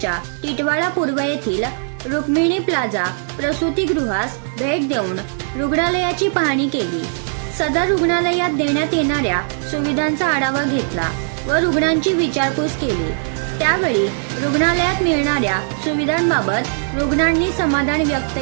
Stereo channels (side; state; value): left; silent; digital silence